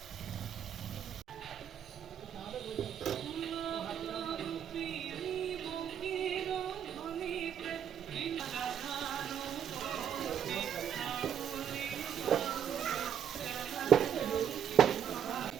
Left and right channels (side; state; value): left; quieter; 8.9 dB